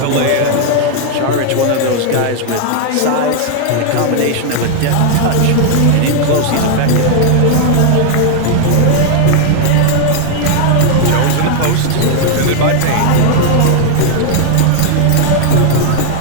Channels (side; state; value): both; different; correlation 0.00